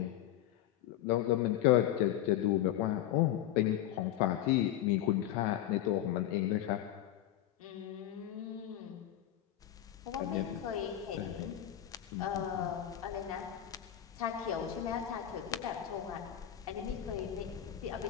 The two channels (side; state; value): right; quieter; 12.0 dB